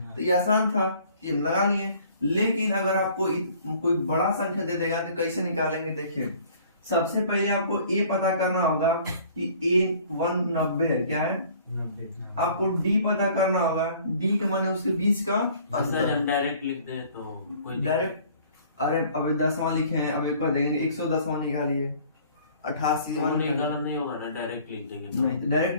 तो ये आसान था, ये हम लगा लिए। लेकिन अगर आपको कोई बड़ा संख्या दे देगा तो कैसे निकालेंगे? देखिए, सबसे पहले आपको ए पता करना होगा कि A1 90 है, क्या है? 90। आपको डी पता करना होगा, डी के माने उसके बीच का अंतर। हम डायरेक्ट लिख दे तो कोई डायरेक्ट, अरे अबे 10वां लिखे हैं, अब एक बार देंगे 110वां निकालिए, 88वां गलत नहीं होगा ना, डायरेक्ट लिख देंगे तो। नहीं, डायरेक्ट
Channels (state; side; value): inverted; both; correlation -0.53